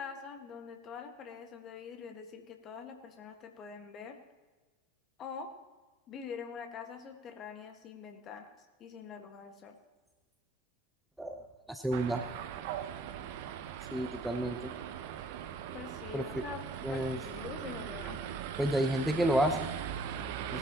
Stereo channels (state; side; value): normal; both; correlation 0.58